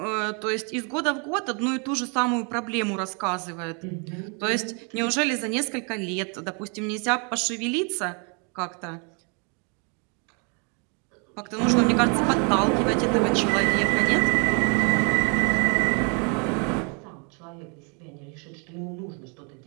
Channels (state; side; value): quieter; left; 35.8 dB